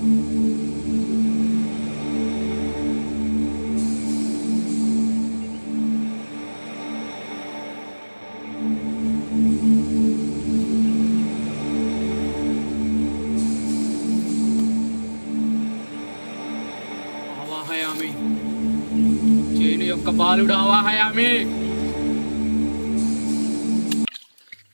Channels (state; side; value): inverted; both; correlation -1.00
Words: ఆవాహయామి, చేను యొక్క బాలుడు ఆవాహయామి.